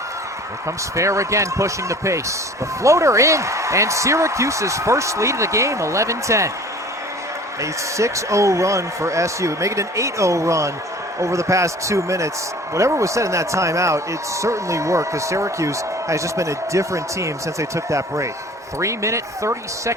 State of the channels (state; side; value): normal; both; correlation 0.46